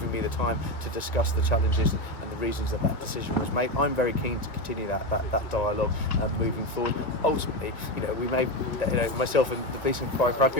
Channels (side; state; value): right; late; 1.7 ms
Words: me the time to discuss the challenges and the reasons that decision was made. I'm very keen to continue that dialogue moving forward. Ultimately, we may, myself and the Police and Fire and Crime